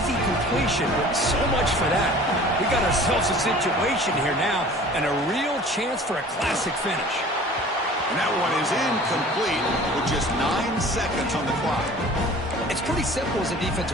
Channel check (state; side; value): normal; both; correlation 0.45